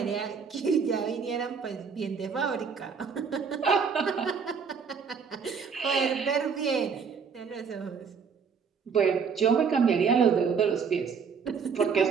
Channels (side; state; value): left; quieter; 6.1 dB